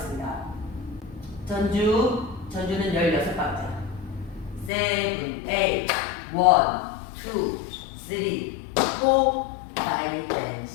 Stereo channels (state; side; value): drops out; right; at 4.7 s